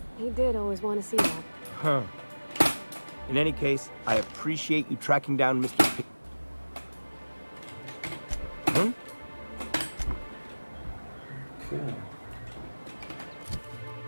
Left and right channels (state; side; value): inverted; both; correlation -1.00